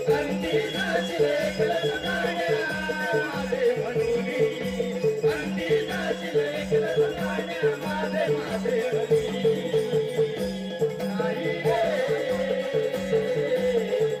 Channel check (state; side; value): identical; both; correlation 1.00